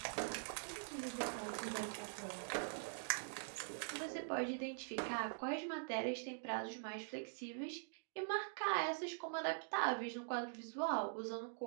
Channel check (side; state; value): left; silent; digital silence